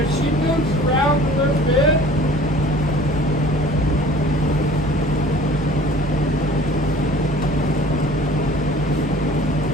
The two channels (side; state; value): both; normal; correlation 0.48